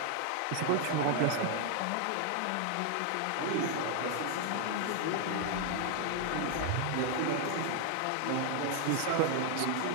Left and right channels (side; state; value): both; different; correlation 0.00